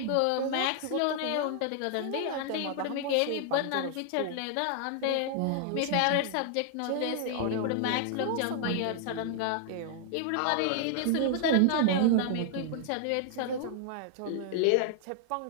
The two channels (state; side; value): different; both; correlation 0.00